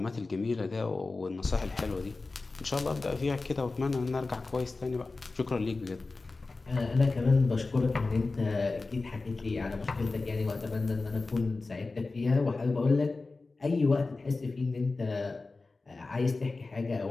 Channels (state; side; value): quieter; right; 3.6 dB